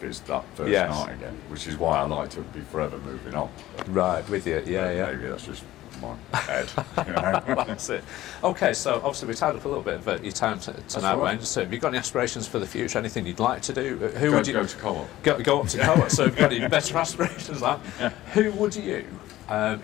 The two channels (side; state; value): right; quieter; 15.2 dB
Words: it's that first night again, which is why I like to be forever moving on. Right, with you, yeah. Maybe that's just my head. You know? That's it. Okay, so obviously we tied up a little bit of your time tonight, Wayne. So have you got any aspirations for the future? Anything you'd like to do? Who would you go to co-op? Go up to co-op. So have you got any better aspirations? Who would you,